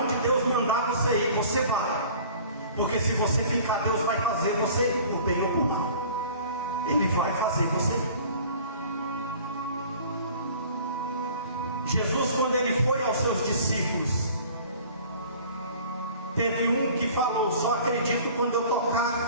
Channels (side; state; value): both; inverted; correlation -0.47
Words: Deus mandar você ir, você vai. Porque se você ficar, Deus vai fazer você ir, por bem ou por mal. Ele vai fazer você ir. Jesus, quando ele foi aos seus discípulos, teve um que falou: só acredito quando eu